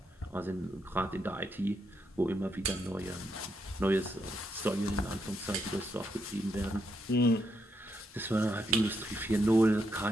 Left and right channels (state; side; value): normal; both; correlation 0.79